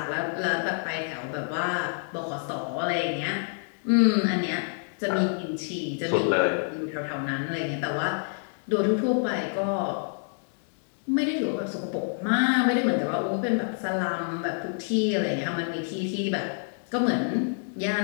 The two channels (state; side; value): silent; right; digital silence